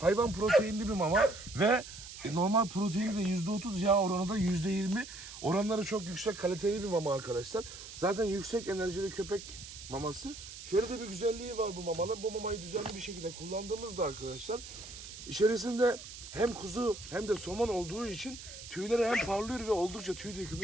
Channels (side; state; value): right; noise; hiss, 13 dB below the sound